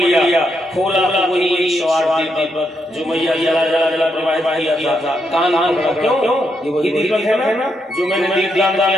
खोला तो वही एक सवार दीपक जो मैया जला जला जला प्रवाहित किया था। कान क्यों? ये वही दीपक है ना जो मैंने दीपदान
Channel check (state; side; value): normal; both; correlation 0.80